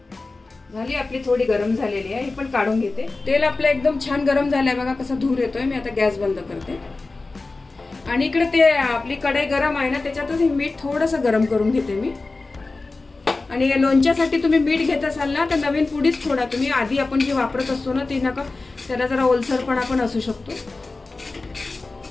झाली आपली थोडी गरम झालेली आहे, ही पण काढून घेते। तेल आपलं एकदम छान गरम झालंय बघा, कसा धूर येतोय। मी आता गॅस बंद करते आणि इकडे ते आपली कढई गरम आहे ना, त्याच्यातच हे मीठ थोडंसं गरम करून घेते मी। आणि लोणच्यासाठी तुम्ही मीठ घेत असाल ना तर नवीन पुडीच थोडा तुम्ही, आधी आपण जे वापरत असतो ना ती नका, त्याला जरा ओलसरपणा पण असू शकतो।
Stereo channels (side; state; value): right; quieter; 3.5 dB